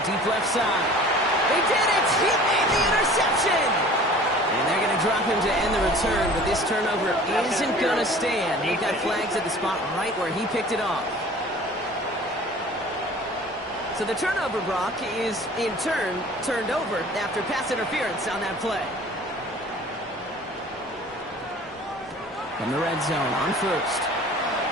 Deep left side. They did it! He made the interception! And they're going to drop him to end the return, but this turnover isn't going to stand. They've got flags at the spot right where he picked it off. So the turnover, Brock, is in turn turned over after pass interference on that play. From the red zone on first.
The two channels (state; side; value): normal; both; correlation 0.46